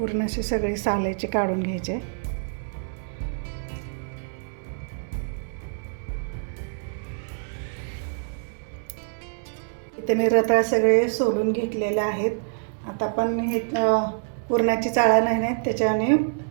अशी सगळी साल याची काढून घ्यायचे. इथे मी रताळ सगळे सोलून घेतलेले आहेत. आता आपण हे पुरणाची चाळा नाही, त्याच्याने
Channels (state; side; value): silent; left; digital silence